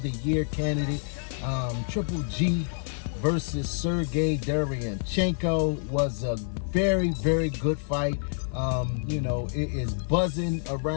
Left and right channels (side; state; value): right; silent; 60 dB below the other